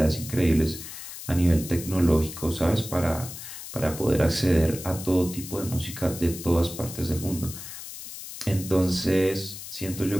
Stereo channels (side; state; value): left; noise; hiss, 11 dB below the sound